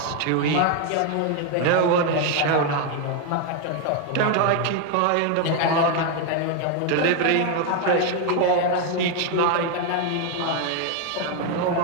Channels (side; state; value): both; different; correlation 0.01